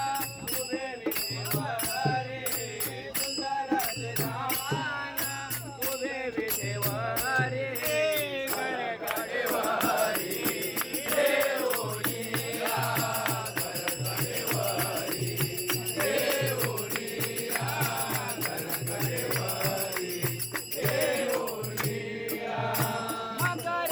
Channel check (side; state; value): both; identical; correlation 1.00